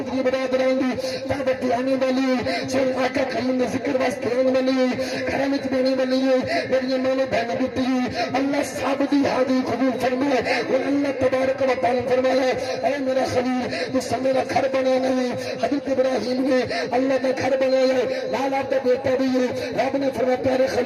برادران دی دعوت آنے والی سن آقا کریم نے ذکر واسطے آنے والی کرامت دینے والی میری ماں بہن بیٹی اللہ صاحب دی حاضری قبول فرمائے اور اللہ تبارک و تعالی فرمایا اے میرا خلیل تو سب میرا گھر بنا نہیں حضرت ابراہیم نے اللہ کا گھر بنایا لال آپ کا بیٹا بھی ہے رب نے فرمایا پیارے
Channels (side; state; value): both; identical; correlation 1.00